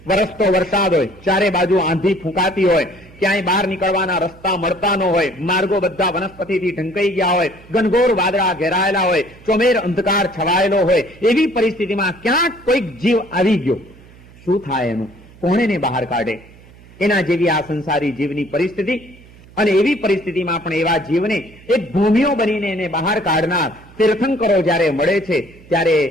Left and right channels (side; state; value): right; noise; hum, 23 dB below the sound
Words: વરસતો વરસાદ હોય, ચારે બાજુ આંધી ફૂંકાતી હોય, ક્યાંય બહાર નીકળવાના રસ્તા મળતા ન હોય, માર્ગો બધા વનસ્પતિથી ઢંકાઈ ગયા હોય, ઘનઘોર વાદળા ઘેરાયેલા હોય, ચોમેર અંધકાર છવાયેલો હોય, એવી પરિસ્થિતિમાં ક્યાંક કોઈક જીવ આવી ગયો, શું થાય એનું? કોણ એને બહાર કાઢે? એના જેવી આ સંસારી જીવની પરિસ્થિતિ. અને એવી પરિસ્થિતિમાં પણ એવા જીવને એક ભૂમિઓ બનીને એને બહાર કાઢનાર તીર્થંકરો જ્યારે મળે છે ત્યારે